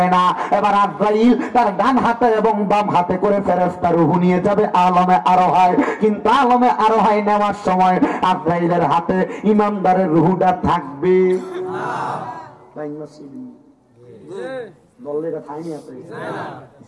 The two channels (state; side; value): identical; both; correlation 1.00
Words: না। এবার আজরাইল তার ডান হাতে এবং বাম হাতে করে ফেরেশতা রূহ নিয়ে যাবে আলমে আরোহায়। কিন্তু আলমে আরোহায় নেওয়ার সময় আজরাইলের হাতে ইমানদারের রূহটা থাকবে না। দলটা থাইনি আছে